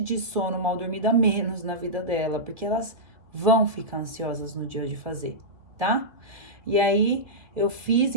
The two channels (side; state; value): left; late; 2.6 ms